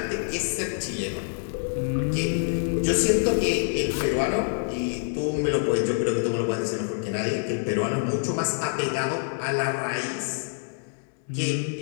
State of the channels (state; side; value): silent; right; digital silence